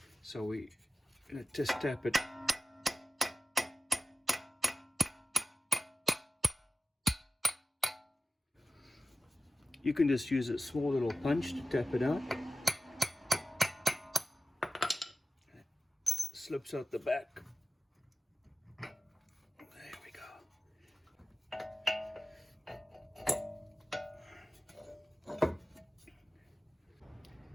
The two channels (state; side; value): normal; both; correlation 0.94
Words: So we're going to just tap it. You can just use a small little punch to tap it out. It slips out the back. There we go.